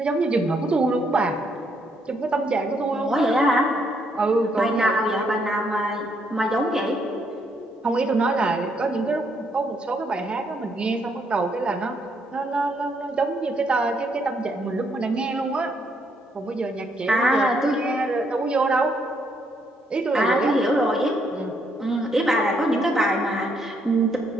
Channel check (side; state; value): both; normal; correlation 0.73